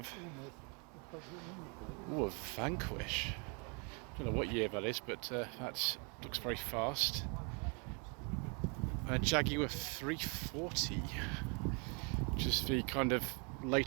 a Vanquish. Don't know what year that is, but that looks very fast. A Jaguar 340, which is the kind of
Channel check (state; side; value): quieter; left; 34.8 dB